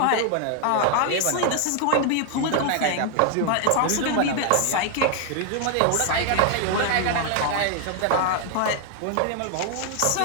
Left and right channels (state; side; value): different; both; correlation 0.00